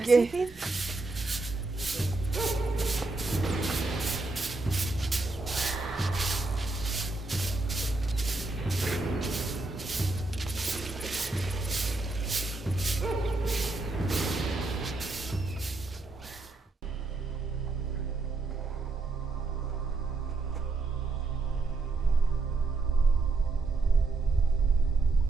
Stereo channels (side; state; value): left; quieter; 3.4 dB